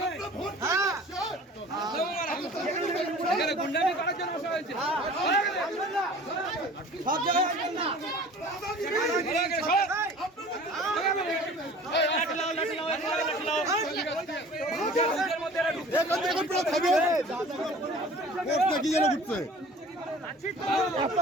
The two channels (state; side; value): normal; both; correlation 0.45